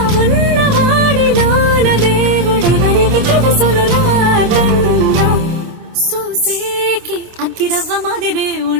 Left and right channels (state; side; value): late; left; 26 ms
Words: ఉన్నవాడిలోన దేవుడెవరికి తెలుసును నాకన్నా. సూసేకి అగ్గిరవ్వ మాదిరే